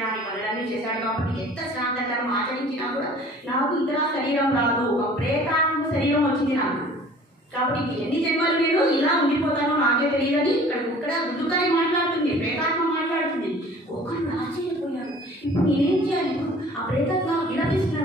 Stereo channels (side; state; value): both; normal; correlation 0.49